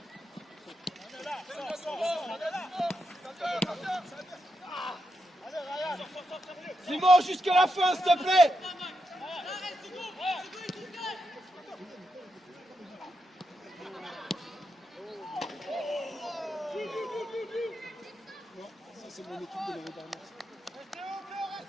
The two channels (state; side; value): normal; both; correlation 0.84